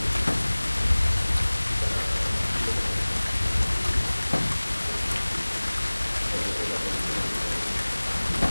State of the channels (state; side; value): inverted; both; correlation -1.00